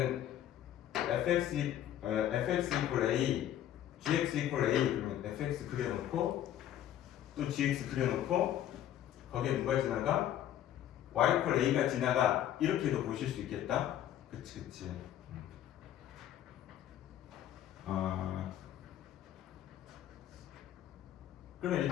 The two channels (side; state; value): right; quieter; 11.6 dB